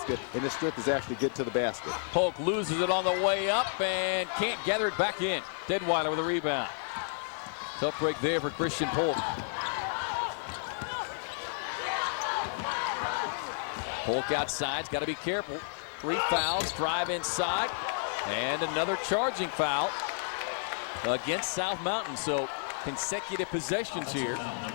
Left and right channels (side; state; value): right; silent; digital silence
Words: and his strength is actually get to the basket. Polk loses it on the way up and can't gather it back in. Deadwiler with a rebound. Tough break there for Christian Polk. Polk outside's got to be careful. 3 fouls, drive inside. And another charging foul against South Mountain. So consecutive possessions here.